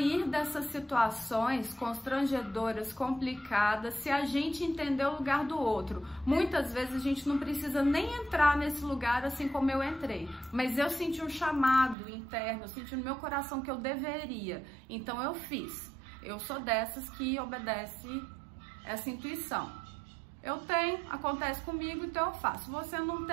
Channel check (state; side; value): drops out; left; at 12.0 s